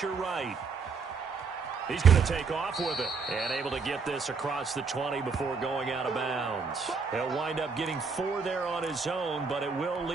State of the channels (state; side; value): quieter; left; 5.0 dB